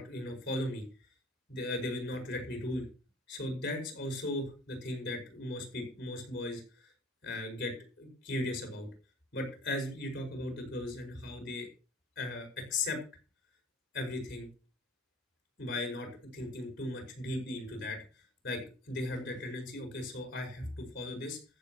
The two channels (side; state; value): both; normal; correlation 0.48